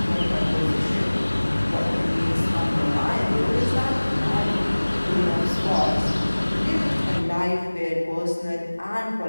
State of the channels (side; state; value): both; inverted; correlation -1.00